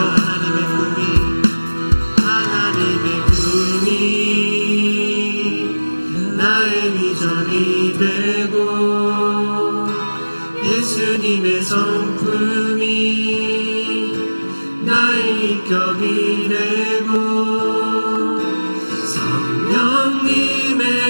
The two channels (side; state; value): both; inverted; correlation -1.00